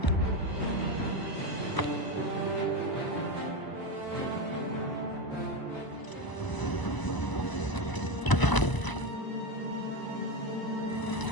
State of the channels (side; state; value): right; late; 1.0 ms